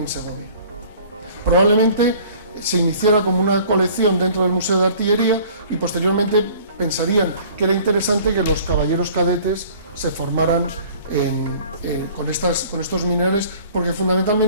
Segovia. Probablemente se iniciara como una colección dentro del Museo de Artillería y posteriormente pensarían que era interesante que los caballeros cadetes se formaran con estos minerales, porque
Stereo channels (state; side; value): inverted; both; correlation -0.50